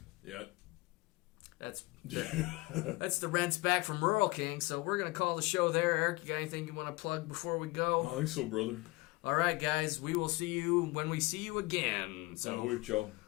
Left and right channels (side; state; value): right; quieter; 22.4 dB